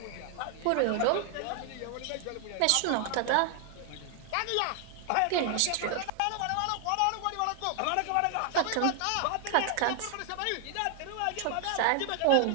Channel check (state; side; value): different; both; correlation 0.00